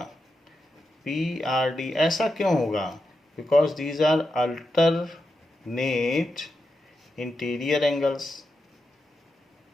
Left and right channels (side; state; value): both; normal; correlation 0.88